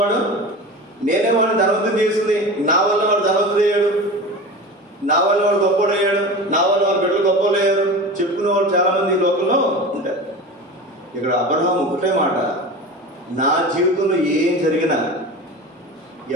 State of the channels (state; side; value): normal; both; correlation 0.31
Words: వాడు నేనే వాడిని ధనవంతుని చేసింది, నా వల్ల వాడు ధనవంతుడు అయ్యాడు, నా వల్ల వాడు గొప్పోడు అయ్యాడు, నా వల్ల వాడు బిడ్డలు గొప్పలు అయ్యారు చెప్పుకునే వాళ్ళు చాలా మంది ఈ లోకంలో ఉంటారు. ఇక్కడ అబ్రహాము ఒకటే మాట, నా జీవితంలో ఏం జరిగినా